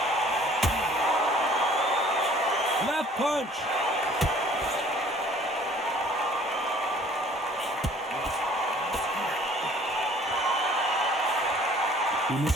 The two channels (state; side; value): normal; both; correlation 0.54